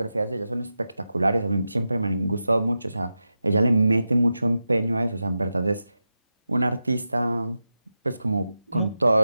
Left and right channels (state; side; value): inverted; both; correlation -0.91